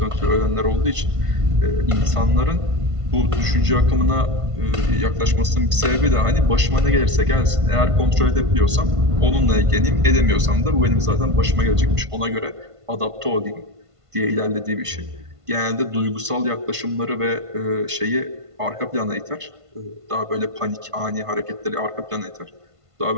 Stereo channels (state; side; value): late; left; 1.5 ms